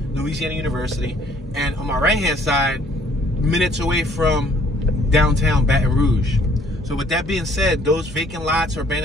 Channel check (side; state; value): both; normal; correlation 0.60